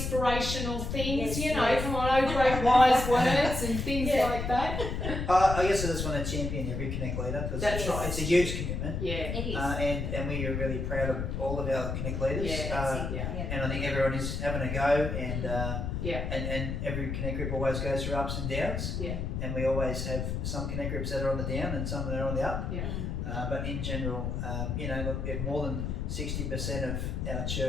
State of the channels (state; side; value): noise; left; rumble, 3 dB below the sound